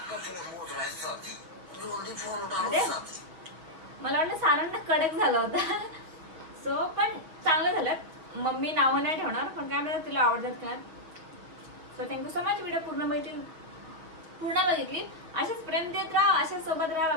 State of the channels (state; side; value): late; left; 6.5 ms